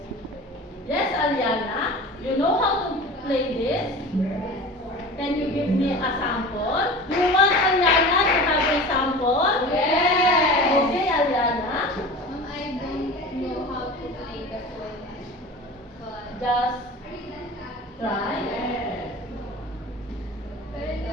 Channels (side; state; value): both; normal; correlation 0.35